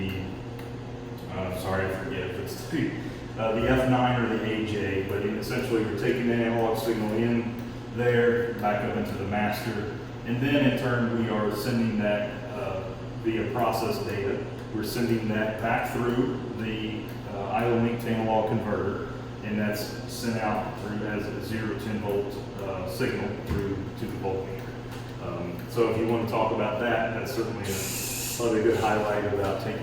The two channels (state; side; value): identical; both; correlation 1.00